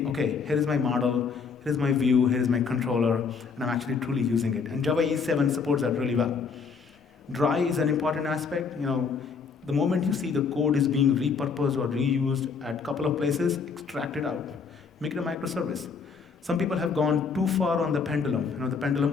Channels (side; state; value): right; quieter; 5.5 dB